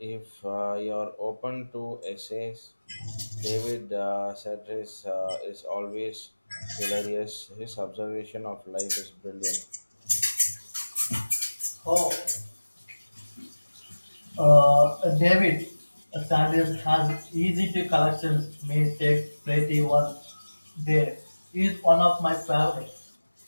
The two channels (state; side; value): inverted; both; correlation -1.00